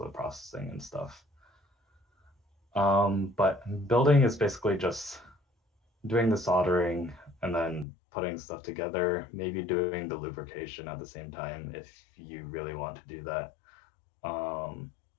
the processing and stuff. But building is basically just doing the soldering and then putting stuff together, maybe doing the lubrication at the same time if you really want to do that.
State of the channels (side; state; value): right; drops out; at 7.9 s